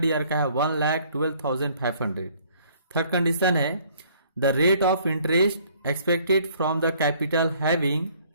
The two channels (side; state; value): both; inverted; correlation -0.60